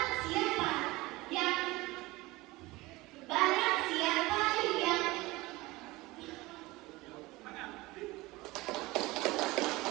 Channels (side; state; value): left; quieter; 20.9 dB